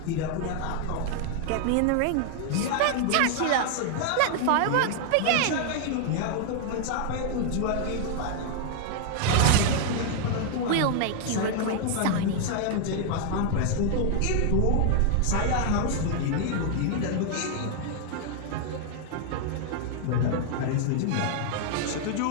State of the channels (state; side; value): different; both; correlation 0.00